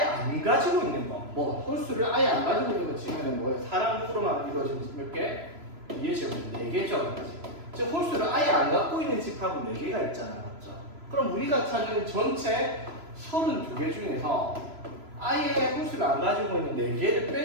가지고 있는 거. 뭐, 홀수를 아예 안 가지고 있는 거 치면 뭐예요? 사람으로만 이루어진 몇 개? 2의 제곱 4개죠. 즉 홀수를 아예 안 갖고 있는 집합은 4개가 있잖아. 맞죠? 그럼 우리가 찾는 전체 32개 중에서 아예 홀수를 안 가지고 있는 4개를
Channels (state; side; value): late; left; 3.0 ms